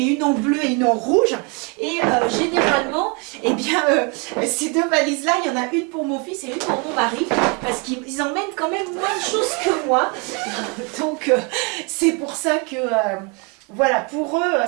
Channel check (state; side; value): quieter; left; 31.5 dB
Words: une en bleu et une en rouge. Et généralement, eh bien, ces deux valises-là, il y en a une pour mon fils et une pour mon mari, parce qu'ils emmènent quand même moins de choses que moi. Donc, c'est pour ça que... voilà, pour eux,